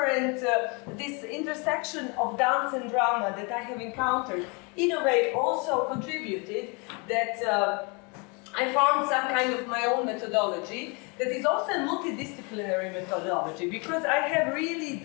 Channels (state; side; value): quieter; right; 31.3 dB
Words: intersection of dance and drama that I have encountered, in a way also contributed that I found some kind of my own methodology that is also a multidisciplinary methodology, because I have really